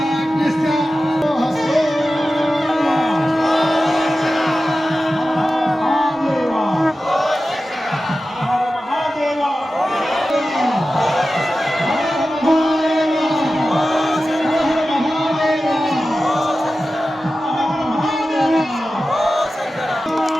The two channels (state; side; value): normal; both; correlation 0.94